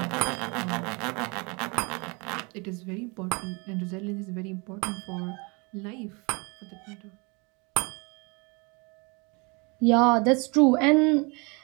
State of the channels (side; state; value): left; quieter; 29.4 dB